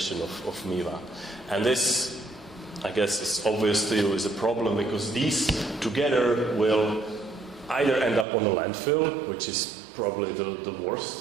of MiWa. And this, I guess, is obvious to you is a problem, because these together will either end up on a landfill, which is probably the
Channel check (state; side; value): drops out; left; at 8.2 s